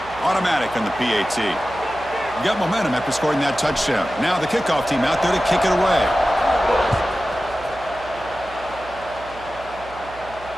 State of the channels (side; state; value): right; noise; hum, 18 dB below the sound